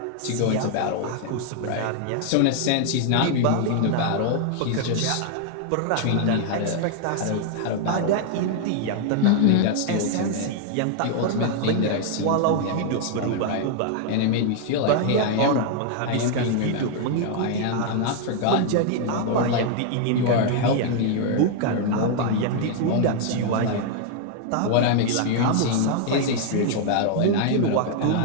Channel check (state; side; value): different; both; correlation 0.00